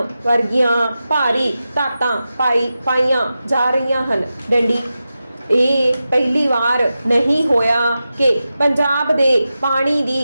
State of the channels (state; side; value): inverted; both; correlation -0.92